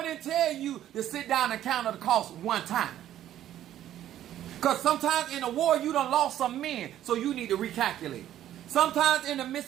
didn't tell you to sit down and count the cost one time. Because sometimes in a war, you done lost some men, so you need to recalculate. Sometimes in the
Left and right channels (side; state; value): left; quieter; 12.0 dB